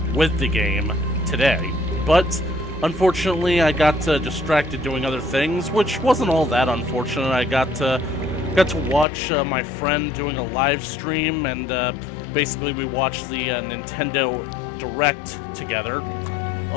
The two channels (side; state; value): right; drops out; at 9.1 s